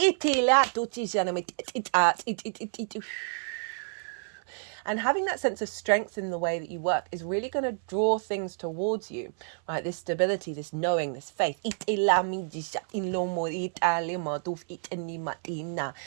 And having that sense of strength in the way that you work is really going to draw things towards you, right? This stability, this knowing, this faith. What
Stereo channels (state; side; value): silent; left; 58 dB below the other